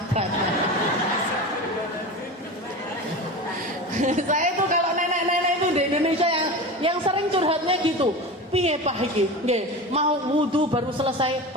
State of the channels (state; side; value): normal; both; correlation 0.28